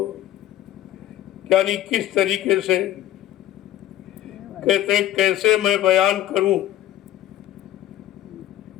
यानी किस तरीके से कहते कैसे मैं बयान करूं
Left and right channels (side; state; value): right; quieter; 13.1 dB